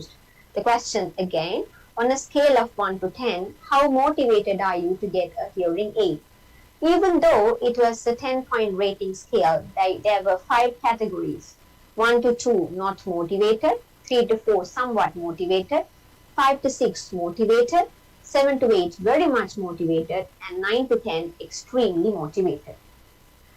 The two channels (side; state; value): both; identical; correlation 1.00